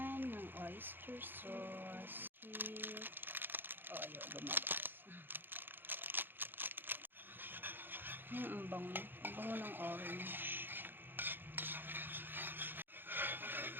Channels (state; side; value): late; left; 0.097 ms